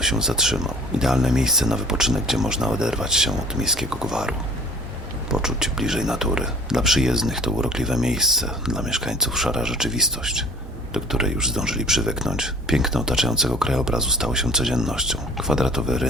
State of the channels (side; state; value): both; normal; correlation 0.48